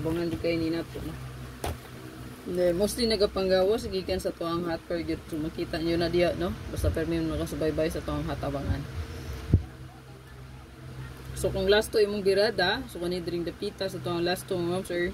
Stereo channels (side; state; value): both; identical; correlation 1.00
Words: di kay ni nato no. Mostly nagapanggawas gikan sa tuang hot pair gyud, so makita niyo na diya no. Basta permi mo nakasubaybay sa tuang hot abangan. So kung last to imong girada, so kani dring dapita sa tuang last to ma'am sir,